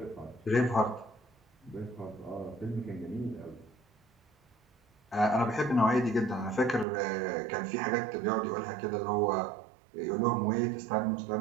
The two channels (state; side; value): drops out; left; at 6.9 s